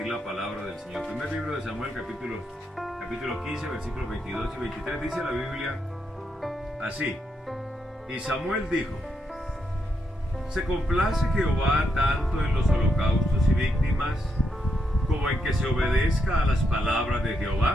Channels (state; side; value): normal; both; correlation 0.81